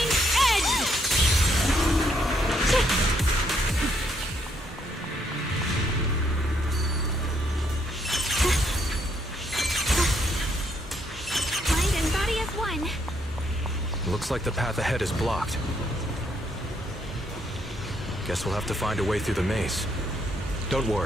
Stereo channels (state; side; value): normal; both; correlation 0.73